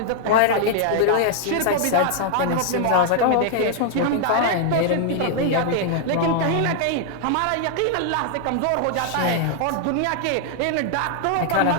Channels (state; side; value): different; both; correlation -0.01